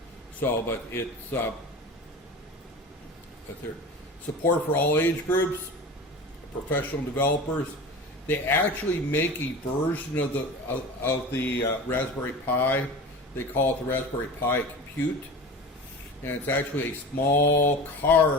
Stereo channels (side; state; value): both; normal; correlation 0.33